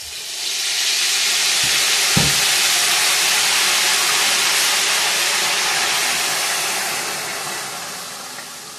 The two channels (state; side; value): identical; both; correlation 1.00